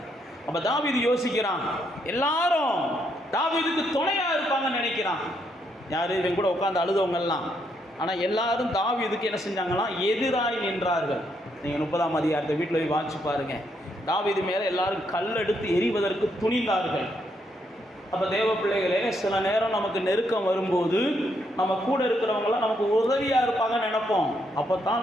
அப்போ தாவீது யோசிக்கிறான், எல்லாரும் தாவீதுக்கு துணையாக இருப்பாங்கன்னு நினைக்கிறான். யார், இவங்க கூட உட்காந்து அழுதவங்கெல்லாம். ஆனால் எல்லாரும் தாவீதுக்கு என்ன செஞ்சாங்களாம், எதிராய் நின்றார்கள். நீங்கள் 30ஆம் அதிகாரத்தை வீட்டில் போய் வாசிச்சு பாருங்கள். தாவீது மேலே எல்லாரும் கல்லெடுத்து எறிவதற்கு துணிந்தார்கள். அப்போ தேவ பிள்ளைகளே, சில நேரம் நமக்கு நெருக்கம் வரும்போது நம்ம கூட இருக்கிறவங்களாம் நமக்கு உதவியாக இருப்பாங்கன்னு நினைப்போம். அப்போ தான்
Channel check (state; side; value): normal; both; correlation 0.76